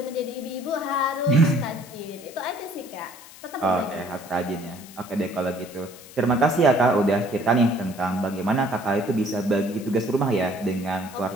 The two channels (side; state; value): left; noise; hiss, 19 dB below the sound